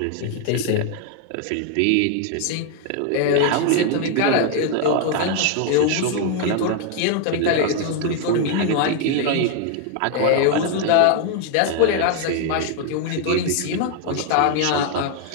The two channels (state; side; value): different; both; correlation 0.01